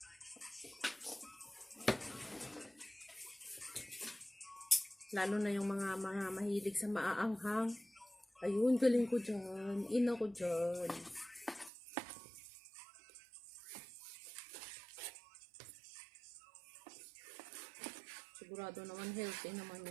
Lalo na yung mga mahilig sa maaanghang. Ayun, galing ko dyan. Ina ko dyan. Sigurado naman healthy naman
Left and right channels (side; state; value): left; drops out; at 11.7 s